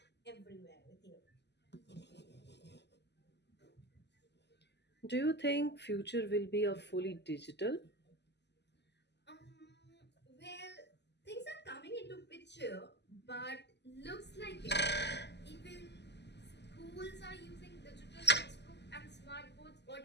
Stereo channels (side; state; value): right; late; 0.50 ms